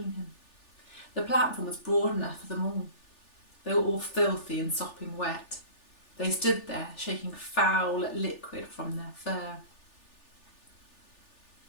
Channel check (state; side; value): late; right; 3.4 ms